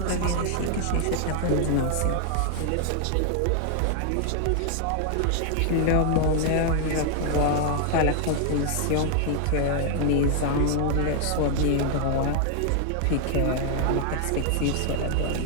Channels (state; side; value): different; both; correlation 0.00